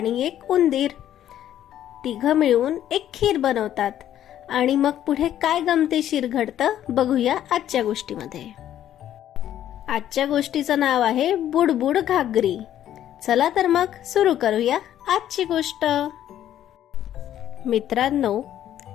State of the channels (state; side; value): quieter; right; 11.4 dB